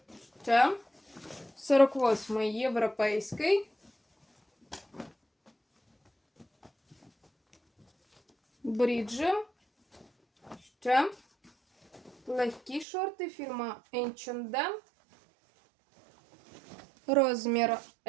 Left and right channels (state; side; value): drops out; left; at 12.9 s